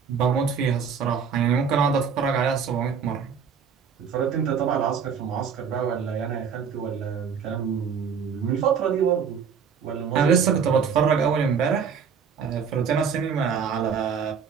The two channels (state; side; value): quieter; left; 6.6 dB